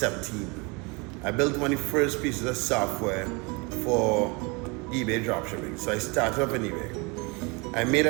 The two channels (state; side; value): quieter; left; 28.7 dB